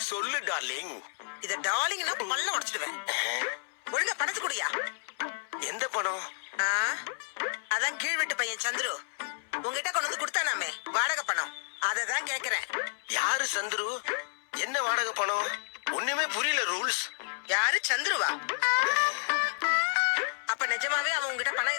சொல்லு டார்லிங். இத டார்லிங்னா பல்ல உடைச்சிடுவேன். ஒழுங்கா பணத்து குடியா. எந்த பணம்? அதான் கீழ் வீட்டு பையன் சந்துரு உங்ககிட்ட கொண்டு வந்து கொடுத்தானாமே வாடகை பணம், அததான் கேக்குறேன். யாரு சந்துரு? என்ன வாடகை பணம்? ஒண்ணுமே புரியல. ரூல்ஸ் யாரு? சந்துருவா? அப்ப நிஜமாவே அவன் உங்ககிட்ட பணம்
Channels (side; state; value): right; silent; 57 dB below the other